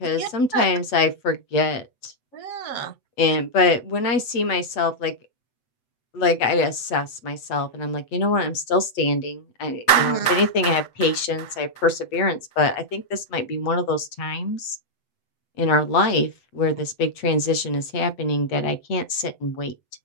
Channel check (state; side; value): late; right; 8.0 ms